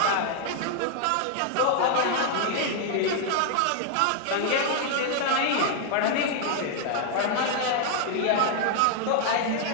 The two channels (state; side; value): different; both; correlation 0.00